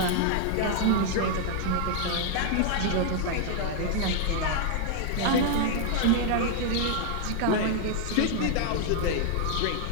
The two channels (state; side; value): different; both; correlation 0.00